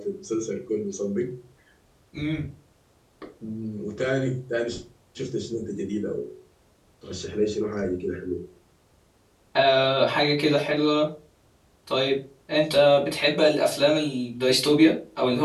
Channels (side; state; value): both; identical; correlation 1.00